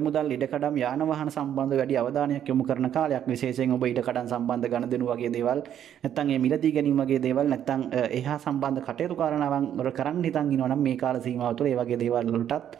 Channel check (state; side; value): quieter; left; 10.0 dB